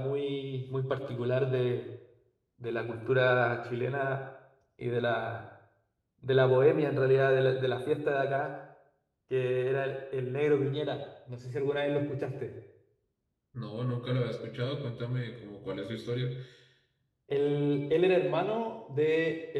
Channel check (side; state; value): both; identical; correlation 1.00